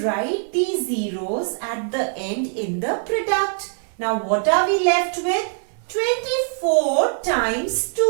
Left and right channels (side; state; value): left; silent; digital silence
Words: these zeros at the end in the product. Now what are we left with? 24 times